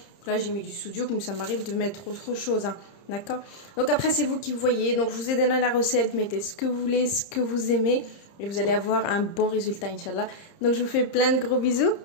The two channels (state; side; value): late; right; 30 ms